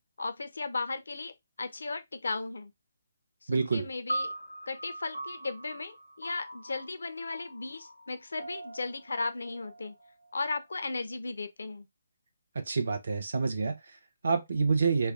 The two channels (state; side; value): inverted; both; correlation -0.87